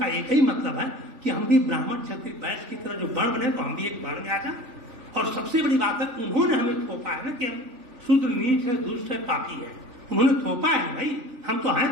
एक ही मतलब है कि हम भी ब्राह्मण क्षत्रिय वैश्य की तरह जो वर्ण बने, तो हम भी एक वर्ण में आ जाए। और सबसे बड़ी बात है, उन्होंने हमें थोपा है ना कि हम शूद्र नीच है, दुष्ट है, पापी है। उन्होंने थोपा है भाई, हम तो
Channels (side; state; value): left; late; 3.4 ms